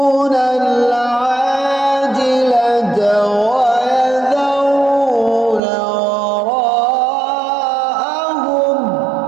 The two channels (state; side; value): drops out; left; at 5.6 s